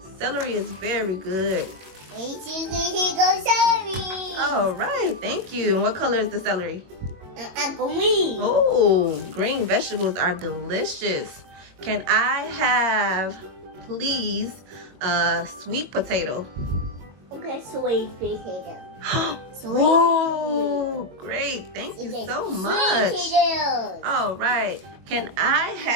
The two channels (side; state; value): left; late; 22 ms